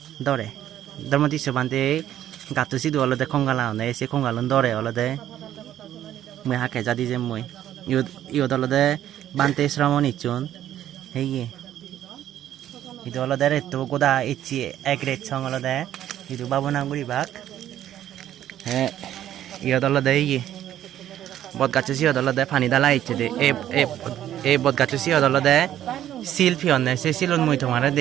dore dormati sobante gatto sidu olode khongala one se khongalon dore olode mui hake jadi je mui iyo dolode bante shramoni chun heye itu olode retto goda ichi ek ret chong olode itu babona guri bak iyo dolode iye bot gacho si odolode pani dala ichi de e bot gacho si odolode selfie onne se silon mui tomare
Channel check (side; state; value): left; quieter; 11.7 dB